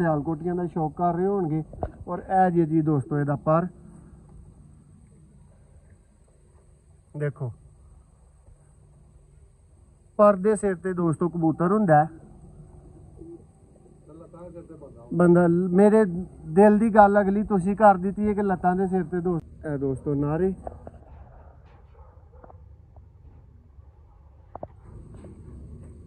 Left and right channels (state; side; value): identical; both; correlation 1.00